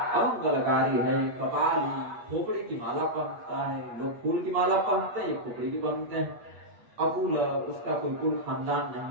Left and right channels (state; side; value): late; left; 8.4 ms